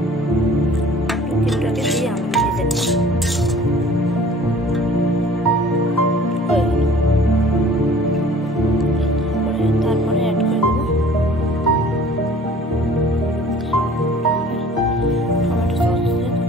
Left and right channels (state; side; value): normal; both; correlation 0.49